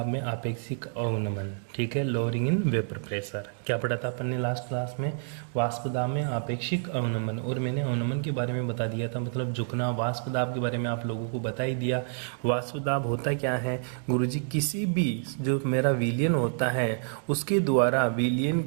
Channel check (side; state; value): left; silent; digital silence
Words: में आपेक्षिक अवनमन, ठीक है, लोअरिंग इन वेपर प्रेशर। क्या पढ़ा था अपन ने लास्ट क्लास में? वाष्प दाब में आपेक्षिक अवनमन। और मैंने अवनमन के बारे में बता दिया था, मतलब झुकना। वाष्प दाब के बारे में आप लोगों को बता ही दिया। वाष्प दाब होता क्या है गुरुजी? किसी भी जो मेरा विलयन होता है उसके द्वारा विलयन